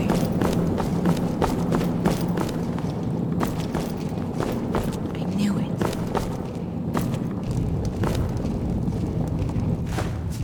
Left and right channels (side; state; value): both; identical; correlation 1.00